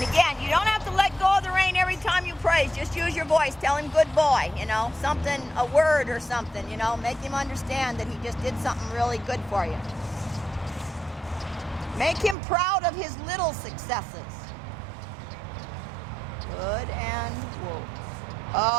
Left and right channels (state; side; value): drops out; left; at 12.4 s